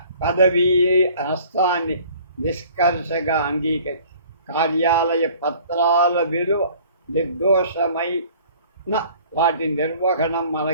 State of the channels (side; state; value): both; inverted; correlation -0.52